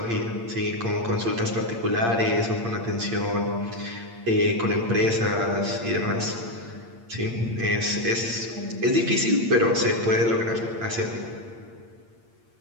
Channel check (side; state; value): left; late; 8.7 ms